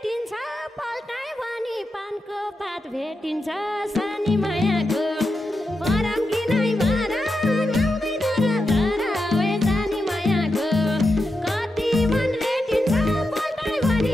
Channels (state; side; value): normal; both; correlation 0.88